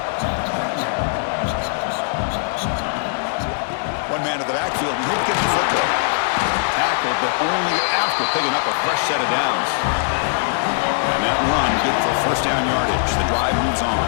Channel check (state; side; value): silent; right; digital silence